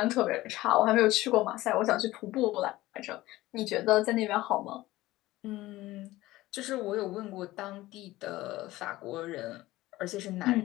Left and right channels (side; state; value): right; quieter; 17.4 dB